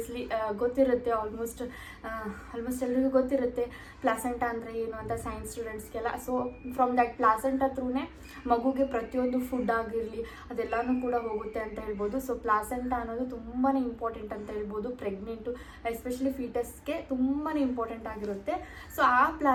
ಗೊತ್ತಿರುತ್ತೆ, ಆಲ್ಮೋಸ್ಟ್ ಎಲ್ರಿಗೂ ಗೊತ್ತಿರುತ್ತೆ ಪ್ಲಾಸೆಂಟಾ ಅಂದರೆ ಏನು ಅಂತ, ಸೈನ್ಸ್ ಸ್ಟೂಡೆಂಟ್ಸ್ಗೆಲ್ಲ. ಸೊ ಫ್ರಮ್ ದ್ಯಾಟ್ ಪ್ಲಾಸೆಂಟಾ ಥ್ರೂನೇ ಮಗುಗೆ ಪ್ರತಿಯೊಂದು ಫುಡ್ ಆಗಿರಲಿ ಅದೆಲ್ಲನೂ ಕೂಡ ಹೋಗುತ್ತೆ ಅಂತ ಹೇಳ್ಬೋದು. ಸೊ ಪ್ಲಾಸೆಂಟಾ ಅನ್ನೋದು ತುಂಬಾ ಇಂಪಾರ್ಟೆಂಟ್ ಅಂತ ಹೇಳ್ಬೋದು. ಪ್ರೆಗ್ನೆಂಟು ಎಸ್ಪೆಷಲಿ ಫೀಟಸ್ಗೆ ತುಂಬಾ ಇಂಪಾರ್ಟೆಂಟ್ ಆಗಿರುತ್ತೆ. ಸೊ ಆ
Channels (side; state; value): both; identical; correlation 1.00